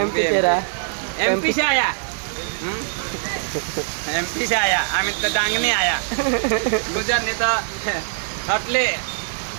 तेरा एमपी से आया एमपी से आया आम्ही तर डांगने आया गुजर नेता हटले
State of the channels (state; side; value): silent; left; digital silence